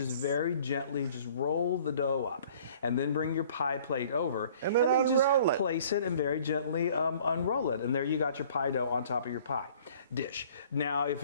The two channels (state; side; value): inverted; both; correlation -0.53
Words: very gently just roll the dough up, and then bring your pie plate over, and then just place it and very gently unroll it, and there you got your pie dough on top of your pie dish. Now, if